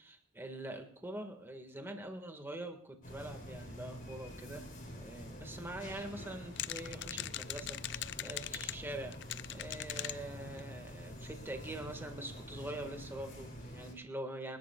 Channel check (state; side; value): normal; both; correlation 0.46